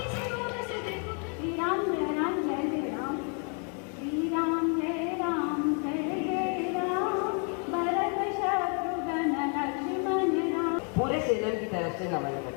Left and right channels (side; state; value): right; quieter; 39.7 dB